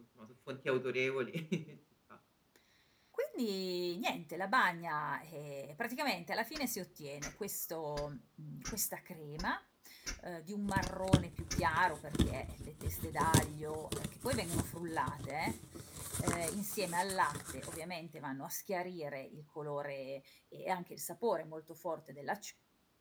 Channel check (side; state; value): both; identical; correlation 1.00